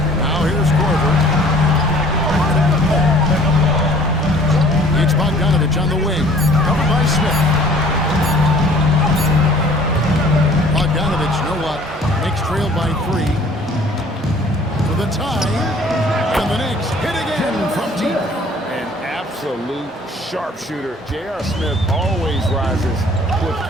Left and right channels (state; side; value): normal; both; correlation 0.53